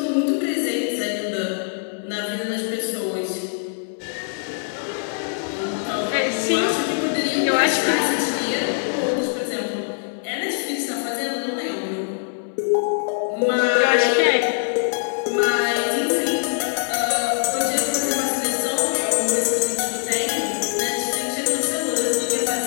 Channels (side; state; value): right; silent; 63 dB below the other